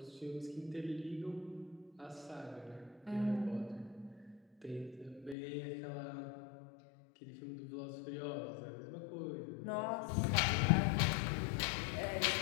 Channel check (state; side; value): drops out; right; at 5.4 s